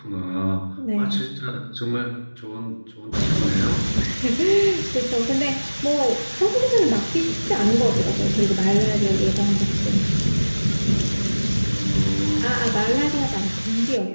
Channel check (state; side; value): inverted; both; correlation -1.00